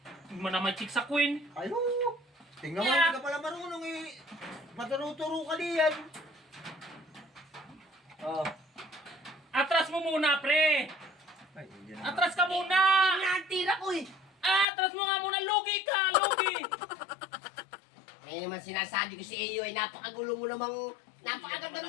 hindi mo naman chick sa queen. Ay, oo. Tingnan mo, Yeah. hindi ka pala marunong eh. Maturo-turo ka diyan. oh. Atras mo muna, pre. Ay, yan. Atras ka muna. Yun nga ang tira ko eh. Atras mo nga muna. Lugi ka, lugi. Ngayon naman sinasabi ko si Eyo ay napakagulo mo namang napakaganda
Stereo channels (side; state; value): right; drops out; at 14.7 s